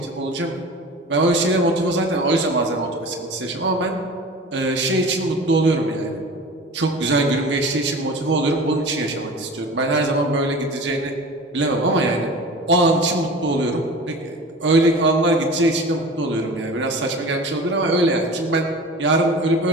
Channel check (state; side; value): normal; both; correlation 0.37